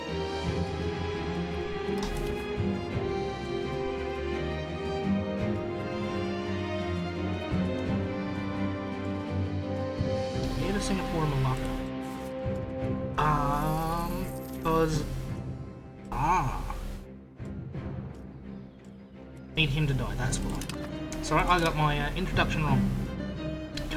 Here to Singapore and Malacca. Because... Need him to die, that's why. Sorry, I got my introduction wrong.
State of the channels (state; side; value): identical; both; correlation 1.00